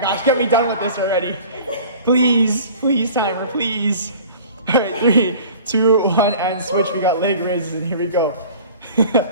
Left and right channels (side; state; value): both; inverted; correlation -0.44